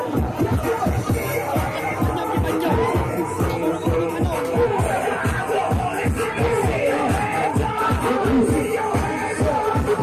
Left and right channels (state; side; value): identical; both; correlation 1.00